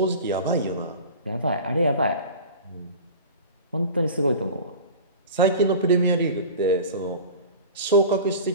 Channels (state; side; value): inverted; both; correlation -0.36